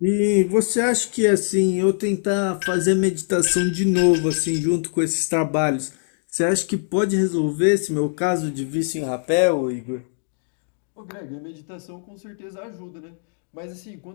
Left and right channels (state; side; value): silent; right; digital silence